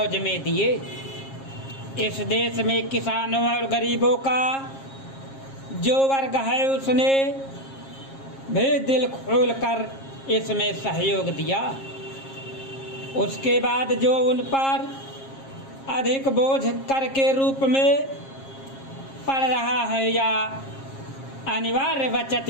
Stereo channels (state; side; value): late; right; 7.4 ms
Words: में दिए। इस देश में किसानों और गरीबों का जो वर्ग है उसने भी दिल खोल कर इसमें सहयोग दिया। उसके बाद जो उन पर अधिक बोझ कर के रूप में पड़ रहा है या अनिवार्य बचत